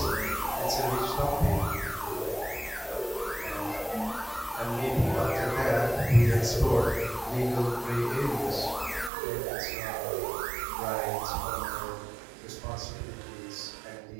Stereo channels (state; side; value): drops out; left; at 9.1 s